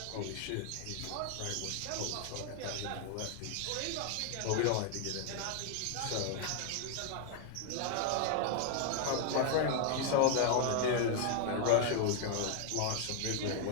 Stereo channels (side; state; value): both; different; correlation 0.00